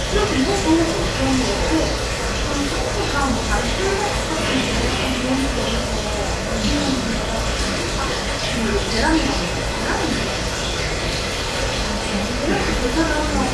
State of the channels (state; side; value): identical; both; correlation 1.00